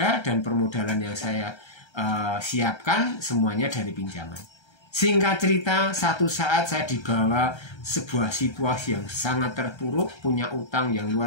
dan permodalan yang saya siapkan semuanya dari pinjaman. Singkat cerita, satu saat saya dibawa sebuah situasi yang sangat terpuruk, punya utang yang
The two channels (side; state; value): right; late; 1.3 ms